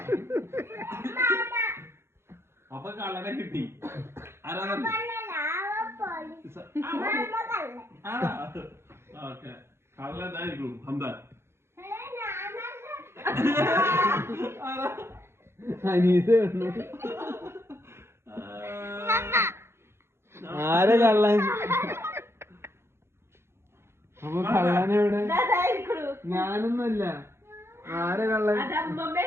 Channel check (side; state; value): left; late; 0.12 ms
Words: അപ്പൊ കള്ളനെ കിട്ടി. ആരാ ഓക്കെ കള്ളനായിരിക്കും ഹംദാൻ. അനീസ് ആരെ കള്ളൻ? അപ്പൊ കള്ളനെവിടെ? ഞാനൊന്നുമല്ല. ആരെ കള്ളൻ?